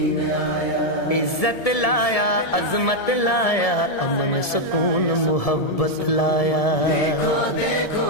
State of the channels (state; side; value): late; right; 1.7 ms